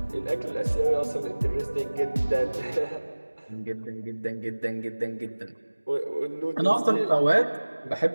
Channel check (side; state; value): both; inverted; correlation -1.00